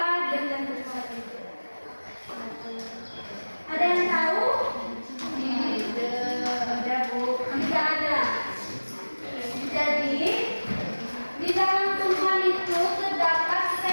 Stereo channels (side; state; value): both; inverted; correlation -1.00